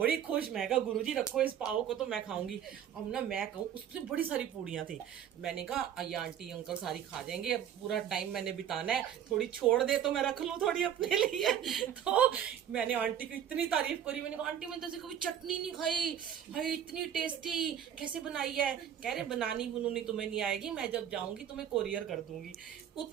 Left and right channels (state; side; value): quieter; left; 9.6 dB